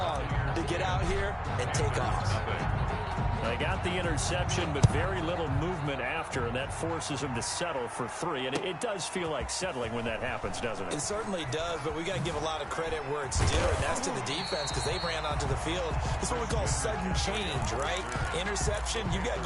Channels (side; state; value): both; identical; correlation 1.00